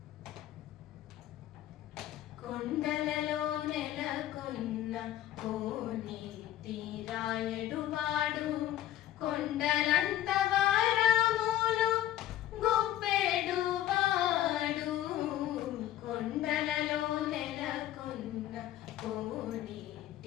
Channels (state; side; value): quieter; right; 13.0 dB